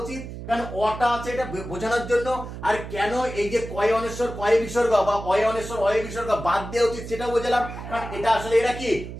উচিত, কারণ অটা আছে এটা বোঝানোর জন্য, আর কেন এই যে কয় অনেশ্বর কয় বিসর্গ বা অয় অনেশ্বর অয় বিসর্গ বাদ দেওয়া উচিত সেটা বোঝালাম। কারণ এটা আসলে এরা কি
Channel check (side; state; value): right; noise; hum, 10 dB below the sound